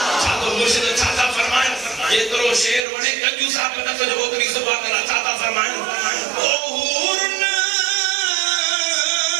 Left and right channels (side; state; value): left; drops out; at 2.9 s